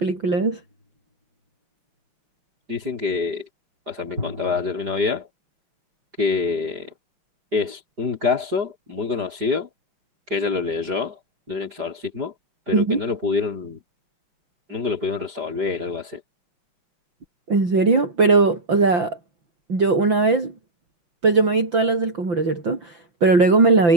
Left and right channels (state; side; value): late; left; 5.8 ms